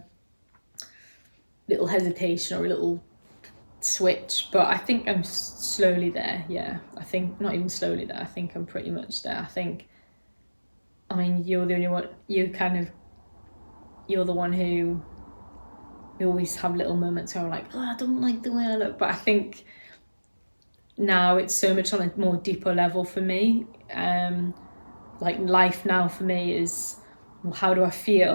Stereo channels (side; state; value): both; inverted; correlation -1.00